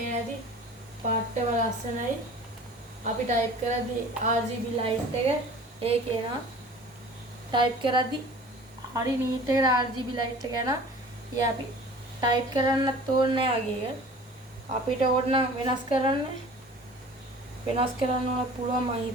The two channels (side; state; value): both; normal; correlation 0.44